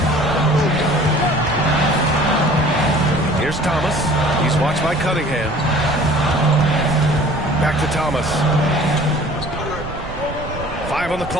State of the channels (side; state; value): right; noise; rumble, 11 dB below the sound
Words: Here's Thomas. He's watched by Cunningham. Back to Thomas. 5 on the